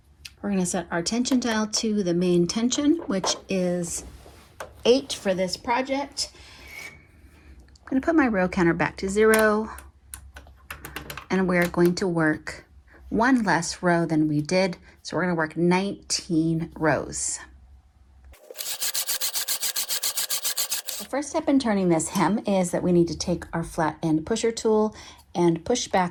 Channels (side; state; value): both; identical; correlation 1.00